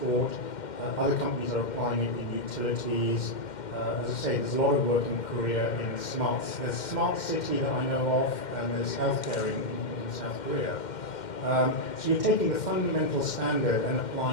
Other companies are applying it in utilities. As I say, there's a lot of work in Korea in there's smart city that I know of, and there's healthcare in South Korea. So you're taking the fundamental standard and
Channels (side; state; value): right; late; 2.1 ms